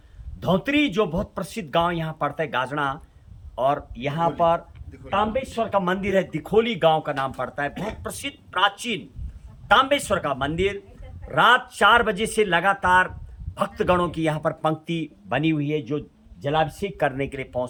धौतरी जो बहुत प्रसिद्ध गांव यहाँ पड़ता है गाजड़ा, और यहाँ पर तांबेश्वर का मंदिर है। दिखोली गांव का नाम पड़ता है। बहुत प्रसिद्ध प्राचीन तांबेश्वर का मंदिर। रात 4 बजे से लगातार भक्तगणों की यहाँ पर पंक्ति बनी हुई है जो जलाभिषेक करने के लिए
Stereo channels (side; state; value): both; identical; correlation 1.00